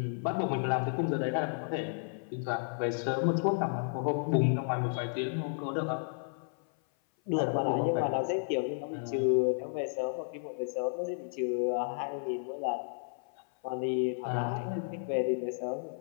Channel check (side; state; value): right; silent; 56 dB below the other